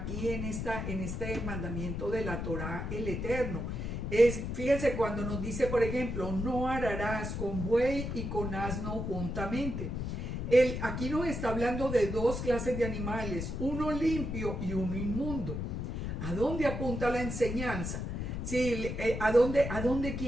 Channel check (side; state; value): left; noise; rumble, 4 dB below the sound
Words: en este mandamiento de la Torá, el Eterno? Fíjese cuando nos dice, por ejemplo, no ararás con buey y con asno juntamente. Aquí nos está hablando de dos clases de animales, uno limpio y uno inmundo. ¿A dónde apunta la enseñanza? ¿A dónde